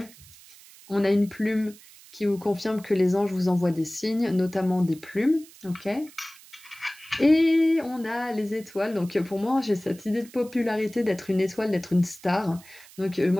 ? On a une plume qui vous confirme que les anges vous envoient des signes, notamment des plumes, ok ? Et on a les étoiles, donc pour moi j'ai cette idée de popularité d'être une étoile, d'être une star. Donc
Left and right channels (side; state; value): right; noise; hiss, 22 dB below the sound